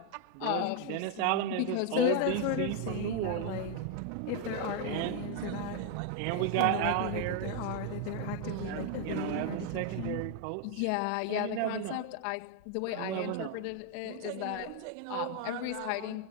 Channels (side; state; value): both; different; correlation 0.01